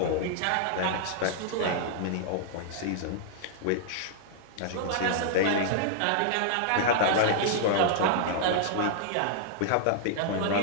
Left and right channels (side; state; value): both; different; correlation -0.01